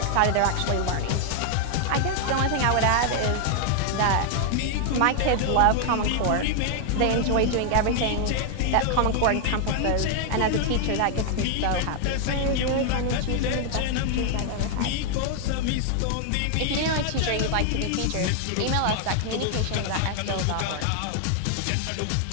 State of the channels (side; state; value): both; different; correlation 0.00